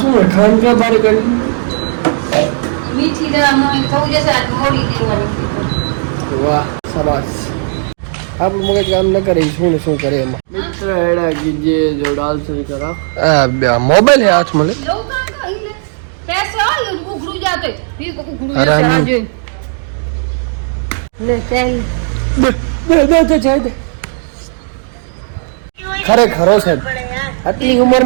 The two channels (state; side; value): silent; left; 64 dB below the other